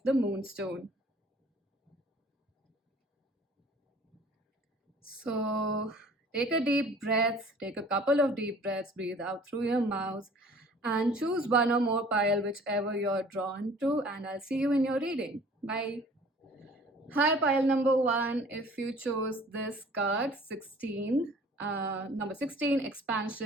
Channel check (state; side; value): normal; both; correlation 0.51